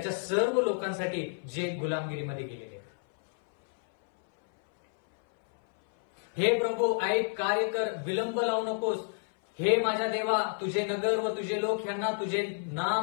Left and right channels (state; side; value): silent; right; 58 dB below the other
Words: सर्व लोकांसाठी जे गुलामगिरीमध्ये गेलेले आहेत. हे प्रभू ऐक, कार्य कर, विलंब लावू नकोस. हे माझ्या देवा, तुझे नगर व तुझे लोक यांना तुझे